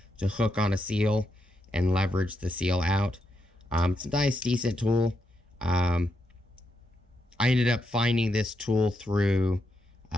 to hook on a seal and leverage the seal out. It's a nice, decent tool. I ended up finding this tool through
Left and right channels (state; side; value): normal; both; correlation 0.82